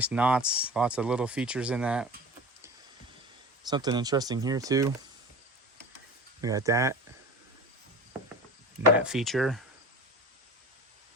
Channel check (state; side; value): normal; both; correlation 0.35